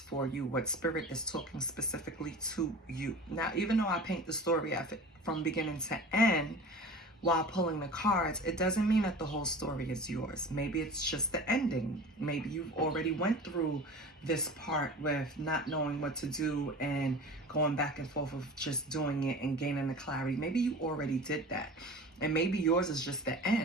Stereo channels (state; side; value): normal; both; correlation 0.37